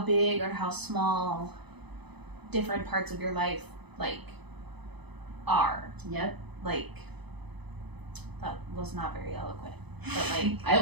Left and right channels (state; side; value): late; left; 0.99 ms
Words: or how small different parts of your life like are. Yep. Like, that was not very eloquent, but like I